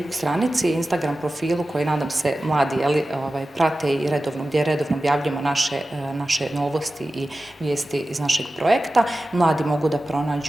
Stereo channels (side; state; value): both; normal; correlation 0.95